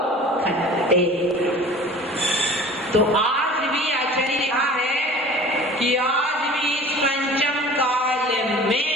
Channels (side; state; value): both; normal; correlation 0.43